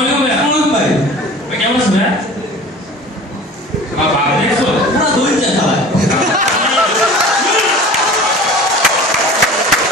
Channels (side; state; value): both; normal; correlation 0.41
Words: আলাইকুম ভাই। আসসালামু ভাই। ভাই কেমন আছেন ভাই? বাবা দেখছো পুরো দই চা খায়।